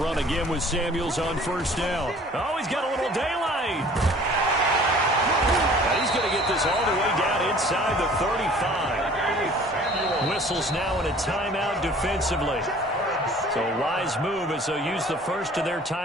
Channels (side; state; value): both; normal; correlation 0.50